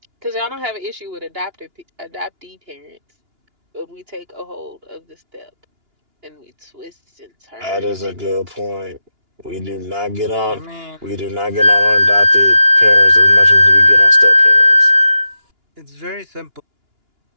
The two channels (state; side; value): late; left; 2.9 ms